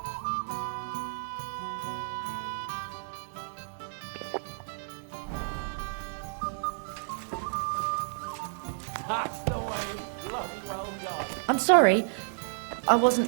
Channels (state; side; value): silent; left; digital silence